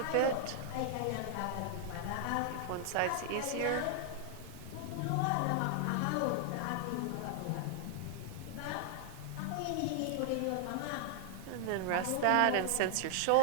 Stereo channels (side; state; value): both; different; correlation 0.00